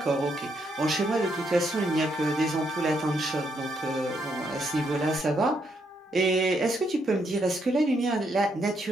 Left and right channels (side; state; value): both; normal; correlation 0.76